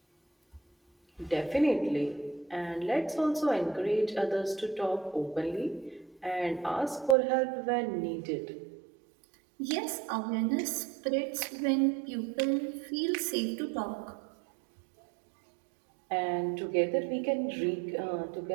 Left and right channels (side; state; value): left; drops out; at 7.2 s